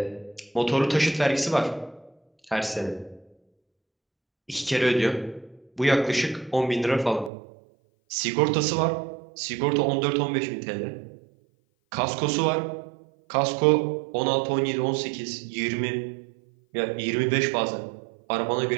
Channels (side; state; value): left; drops out; at 7.3 s